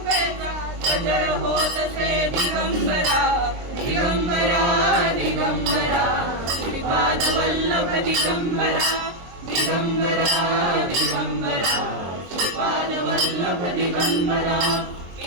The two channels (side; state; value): left; late; 23 ms